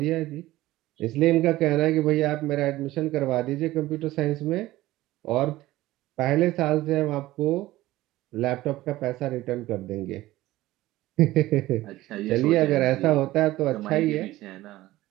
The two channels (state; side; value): quieter; left; 16.8 dB